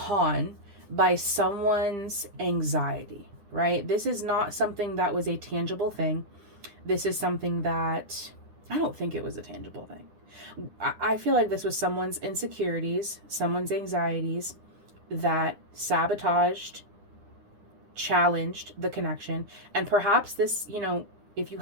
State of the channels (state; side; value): late; left; 9.9 ms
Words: by someone's anxiety, right? This is not something that was a tangible thing. This is something that, I don't think it was a tangible thing. I feel like this was someone's insecurities, someone's anxieties that sabotaged, challenged the connection. And perhaps this, you know, if you